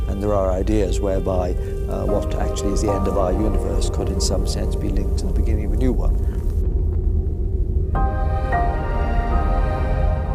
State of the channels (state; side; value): identical; both; correlation 1.00